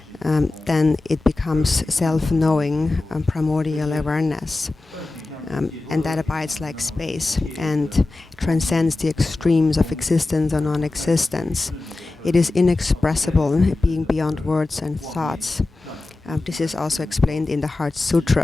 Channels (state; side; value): quieter; right; 3.2 dB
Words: then it becomes self-knowing, primordial awareness. And that abides like space and transcends the extremes of existence or non-existence. It is inexpressible, being beyond words and thoughts. This is also explained in the Heart